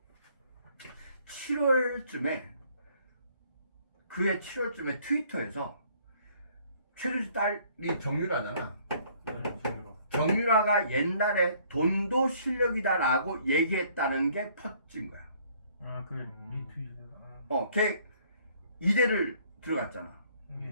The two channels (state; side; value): inverted; both; correlation -0.61